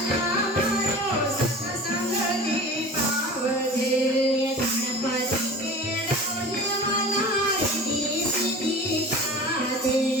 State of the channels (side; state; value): both; normal; correlation 0.37